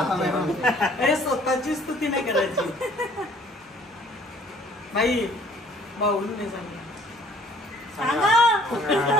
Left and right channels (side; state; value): both; normal; correlation 0.57